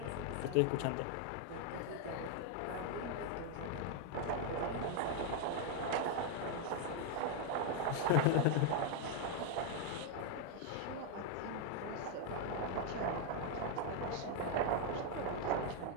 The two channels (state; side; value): different; both; correlation 0.00